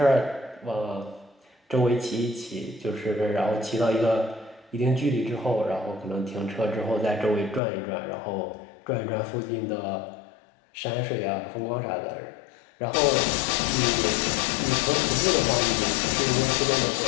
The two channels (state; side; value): drops out; right; at 7.6 s